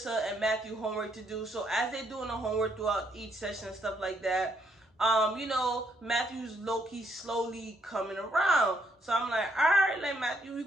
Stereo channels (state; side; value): normal; both; correlation 0.73